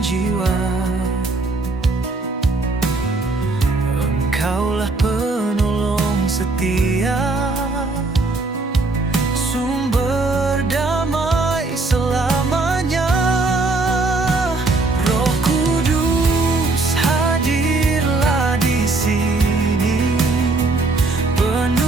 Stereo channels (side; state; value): left; quieter; 3.3 dB